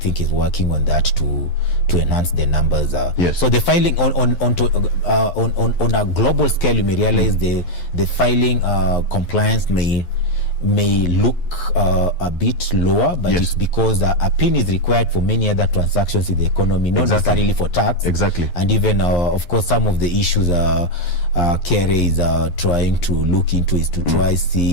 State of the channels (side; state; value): right; late; 11 ms